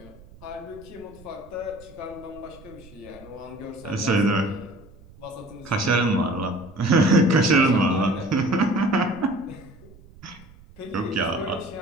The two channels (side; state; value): right; noise; rumble, 23 dB below the sound